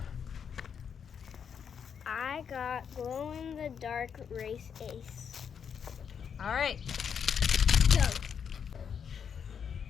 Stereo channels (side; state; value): right; quieter; 7.3 dB